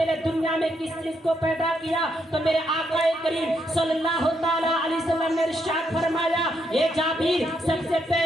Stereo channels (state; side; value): normal; both; correlation 0.77